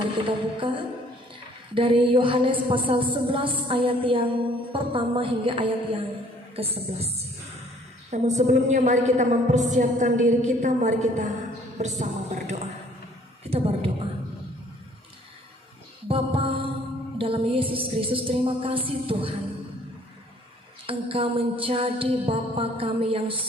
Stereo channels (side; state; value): both; normal; correlation 0.58